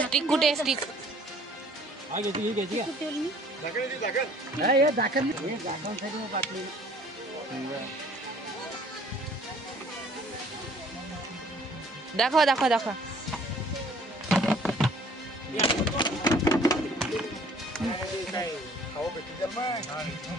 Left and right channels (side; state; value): both; normal; correlation 0.56